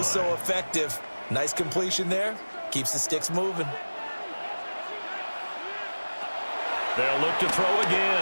so effective. Nice completion there. Keeps the sticks moving. They'll look to throw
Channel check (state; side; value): inverted; both; correlation -1.00